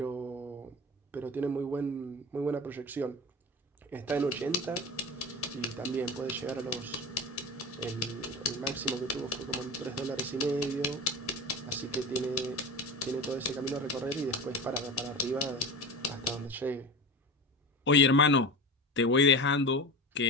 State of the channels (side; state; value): both; normal; correlation 0.30